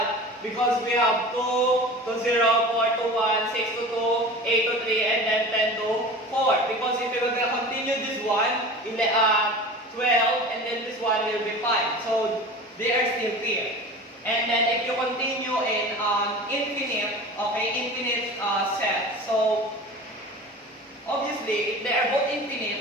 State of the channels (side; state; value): both; normal; correlation 0.36